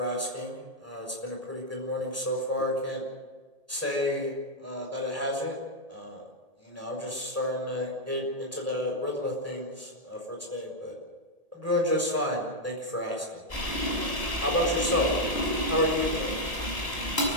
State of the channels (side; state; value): left; late; 1.7 ms